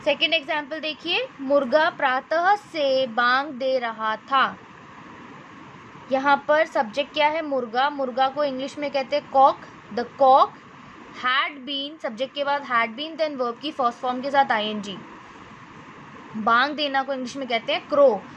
सेकेंड एग्जाम्पल देखिए, मुर्गा प्रातः से बांग दे रहा था। यहाँ पर सब्जेक्ट क्या है, मुर्गा। मुर्गा को इंग्लिश में कहते हैं cock. The cock had been, subject के बाद हैड बीन, देन वर्ब की फर्स्ट फॉर्म के साथ आईएनजी। बांग देना को इंग्लिश में कहते हैं क्रो,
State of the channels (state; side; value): identical; both; correlation 1.00